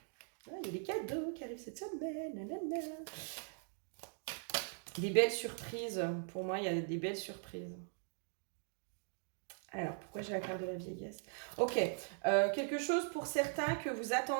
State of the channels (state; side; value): silent; left; 51 dB below the other